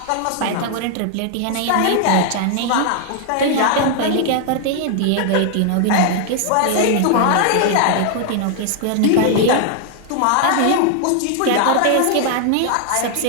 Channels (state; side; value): different; both; correlation 0.00